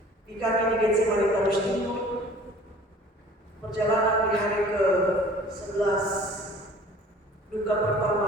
Di kami di GC Malitabus Timur, perjalanan di hari ke-11, duka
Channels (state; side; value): normal; both; correlation 0.49